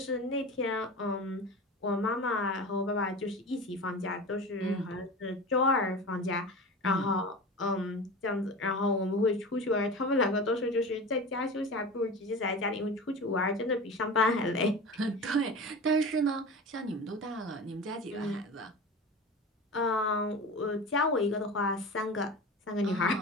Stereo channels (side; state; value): both; normal; correlation 0.31